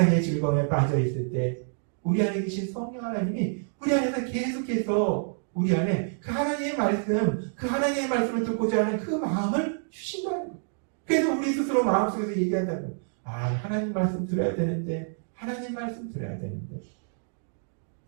즐거움에 빠져 있을 때 우리 안에 계신 성령 하나님이 우리 안에서 계속해서 우리 안에 그 하나님의 말씀, 그 하나님의 말씀을 듣고자 하는 그 마음을 주신다는 거예요. 그래서 우리 스스로 마음속에서 얘기한다는 거예요. 하나님 말씀 들어야 되는데, 하나님 말씀 들어야 되는데.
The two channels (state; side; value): silent; left; digital silence